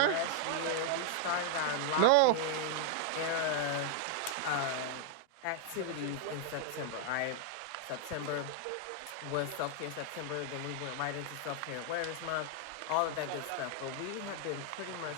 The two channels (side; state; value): both; different; correlation -0.01